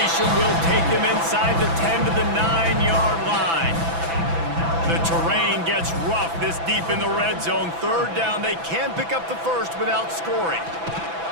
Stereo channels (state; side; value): late; left; 6.0 ms